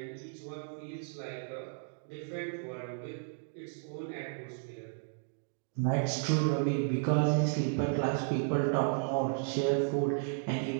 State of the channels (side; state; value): left; silent; digital silence